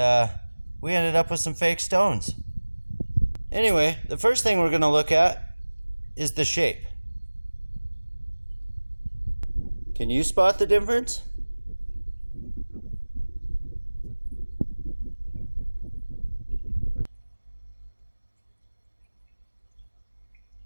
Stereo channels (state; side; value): inverted; both; correlation -1.00